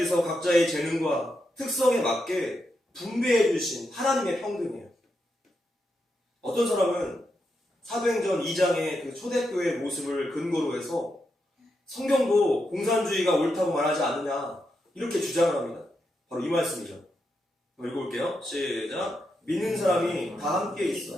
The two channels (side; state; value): both; normal; correlation 0.84